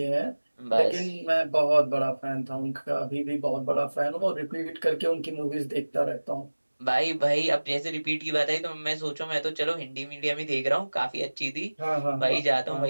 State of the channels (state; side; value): inverted; both; correlation -1.00